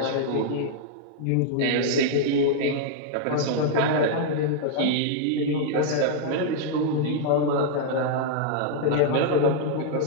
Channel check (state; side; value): different; both; correlation -0.01